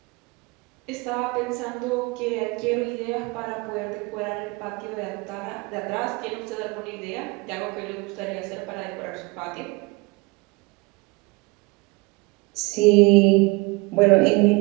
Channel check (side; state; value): left; quieter; 25.4 dB